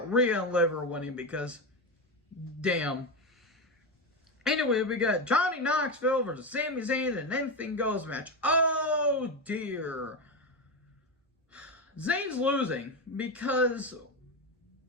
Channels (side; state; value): both; normal; correlation 0.14